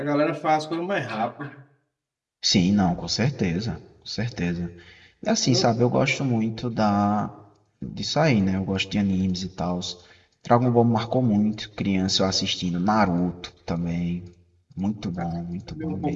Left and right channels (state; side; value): identical; both; correlation 1.00